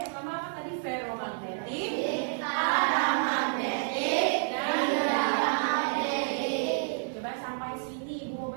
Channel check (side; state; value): left; silent; 58 dB below the other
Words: pertama apa tadi? Ferromagnetik, paramagnetik, dan diamagnetik. Coba sampai sini Ibu mau